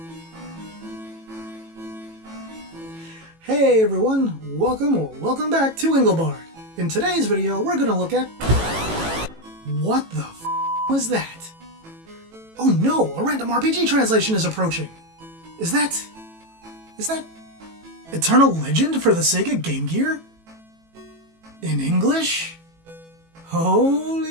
Hey everyone, welcome back to Engelbart. In today's video, we're gonna look at... What the f*** was that? Oh no, a random RPG translation is approaching. Is that Eternal Legend for the Sega Game Gear? In English?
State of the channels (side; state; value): left; late; 18 ms